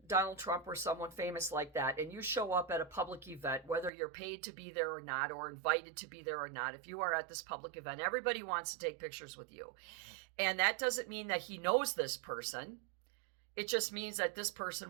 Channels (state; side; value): drops out; left; at 3.9 s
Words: Donald Trump or someone famous like that, and you show up at a public event, whether you're paid to be there or not, or invited to be there or not, if you are at this public event, everybody wants to take pictures with you. And that doesn't mean that he knows this person. It just means that this